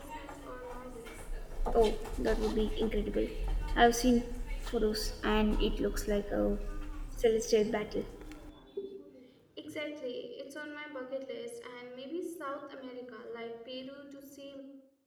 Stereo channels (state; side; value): identical; both; correlation 1.00